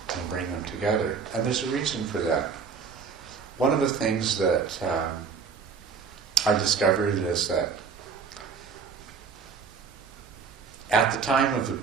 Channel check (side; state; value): left; quieter; 5.8 dB